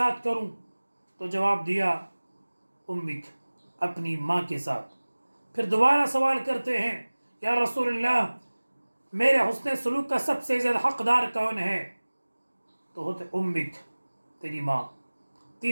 کروں؟ تو جواب دیا، امک، اپنی ماں کے ساتھ۔ پھر دوبارہ سوال کرتے ہیں، یا رسول اللہ میرے حسن سلوک کا سب سے زیادہ حقدار کون ہے؟ تو ہوتے امک، تیری ماں۔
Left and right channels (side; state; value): both; inverted; correlation -1.00